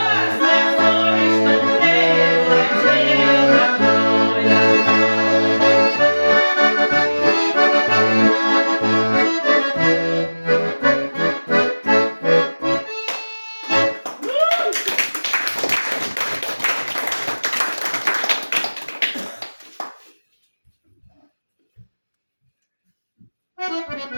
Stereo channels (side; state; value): both; inverted; correlation -1.00